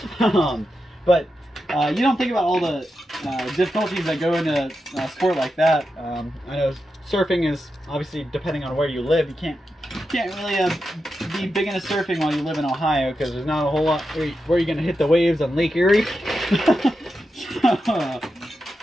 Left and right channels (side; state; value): both; normal; correlation 0.88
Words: But you don't think about all the difficulties that go into a sport like that. I know surfing is obviously, depending on where you live, you can't really be big into surfing while you live in Ohio, because there's not a whole lot where you're going to hit the waves on Lake Erie.